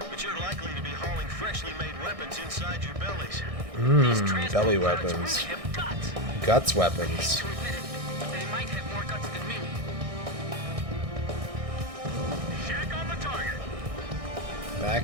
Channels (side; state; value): left; late; 1.6 ms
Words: but you're likely to be hauling freshly made weapons inside your bellies. Belly weapons. Guts weapons. They might have more guts than me. Shack on the target.